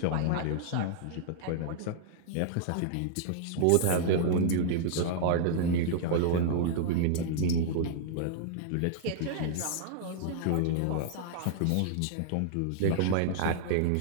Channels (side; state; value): both; different; correlation -0.01